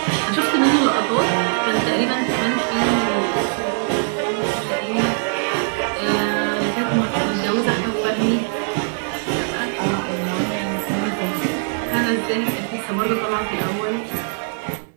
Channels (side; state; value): left; silent; 60 dB below the other